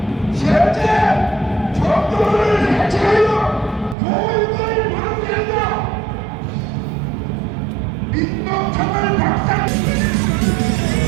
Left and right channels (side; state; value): left; drops out; at 4.0 s